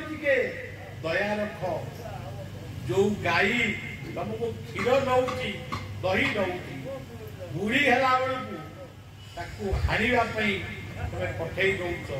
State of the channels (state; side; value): identical; both; correlation 1.00